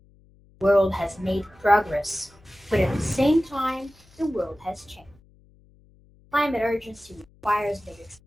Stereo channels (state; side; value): noise; left; hum, 29 dB below the sound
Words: The world has made progress, but at the same time, the world has changed. Climate urgency requires that we